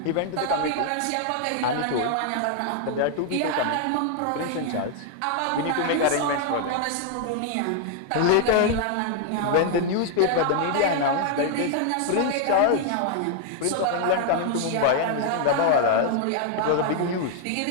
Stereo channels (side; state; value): both; different; correlation 0.00